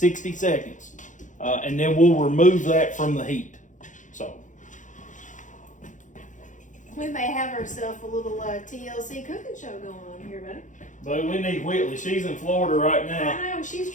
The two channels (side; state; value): right; late; 0.36 ms